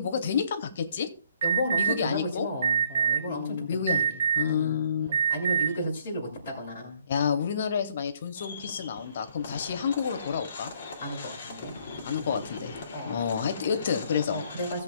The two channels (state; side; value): inverted; both; correlation -0.66